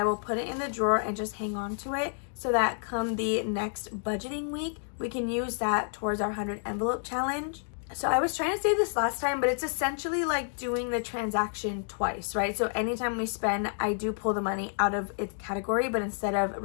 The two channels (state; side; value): silent; right; digital silence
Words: will put it in the drawer and just hang on to it so that come the next budgeting week, we can use that towards our 100 envelope challenge. So I was trying to say this last time, but it's essentially like doing the transaction twice, right? So anytime we spend, I do pull the money out of its category, but instead of